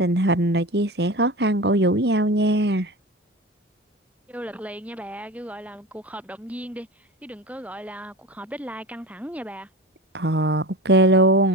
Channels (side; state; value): both; normal; correlation 0.30